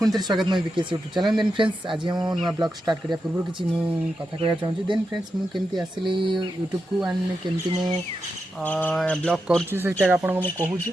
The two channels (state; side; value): normal; both; correlation 0.88